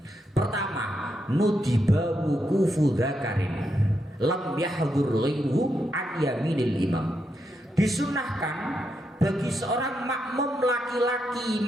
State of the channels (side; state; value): both; normal; correlation 0.82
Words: Pertama, nudiba wukufu dzakarin lam yahdhur ghairuhu an yaminil imam. Disunnahkan bagi seorang makmum laki-laki